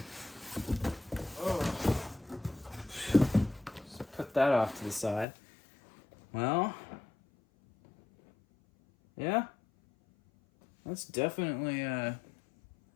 Oh. Just put that off to the side. Well, yeah, that's definitely a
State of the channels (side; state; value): right; drops out; at 5.2 s